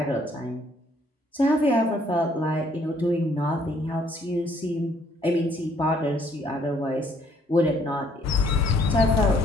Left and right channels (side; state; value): both; normal; correlation 0.64